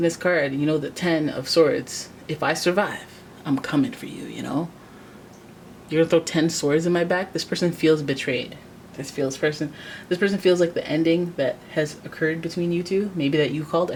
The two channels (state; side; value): identical; both; correlation 1.00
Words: this card, you know the 10 of Swords. If I survive, I'm coming for you, you know? You're going to throw 10 swords in my back? This person feels betrayed. This person feels like the ending that has occurred between you two, maybe that you called.